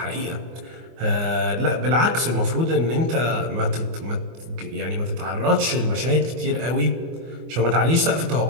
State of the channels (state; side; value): late; left; 24 ms